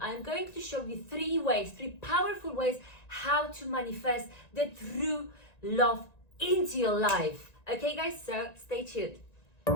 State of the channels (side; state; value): right; late; 1.9 ms